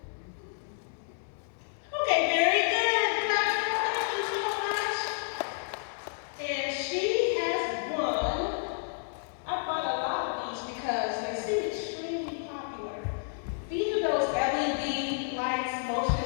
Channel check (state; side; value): silent; right; digital silence